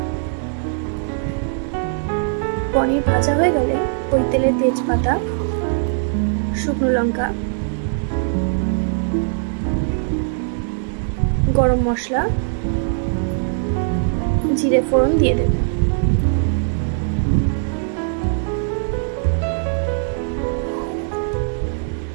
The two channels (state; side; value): silent; left; digital silence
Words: পনির ভাজা হয়ে গেলে ওই তেলে তেজপাতা, শুকনো লঙ্কা, গরম মশলা, জিরে ফোড়ন দিয়ে দেব।